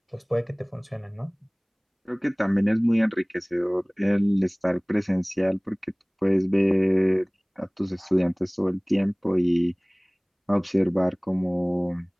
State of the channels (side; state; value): both; identical; correlation 1.00